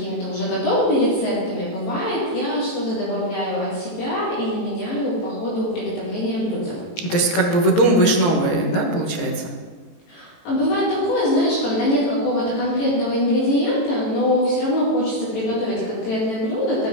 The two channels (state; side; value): late; right; 18 ms